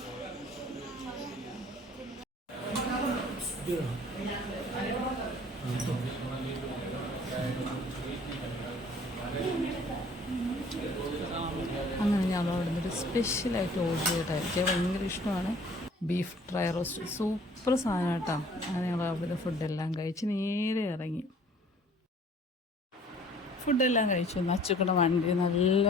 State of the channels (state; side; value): normal; both; correlation 0.53